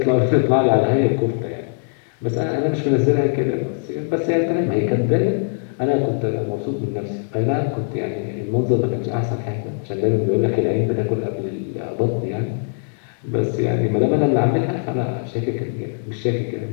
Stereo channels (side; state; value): right; silent; 65 dB below the other